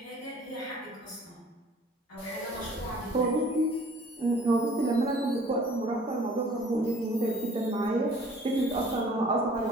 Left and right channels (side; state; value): both; normal; correlation 0.53